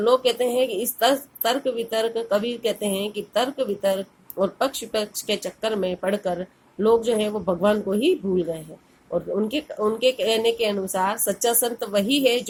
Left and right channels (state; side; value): identical; both; correlation 1.00